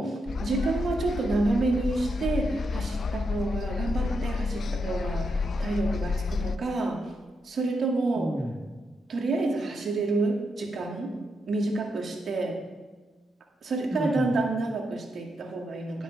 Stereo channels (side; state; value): both; normal; correlation 0.83